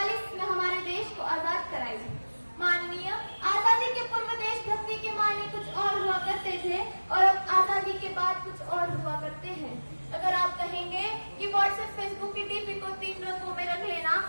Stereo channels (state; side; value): inverted; both; correlation -1.00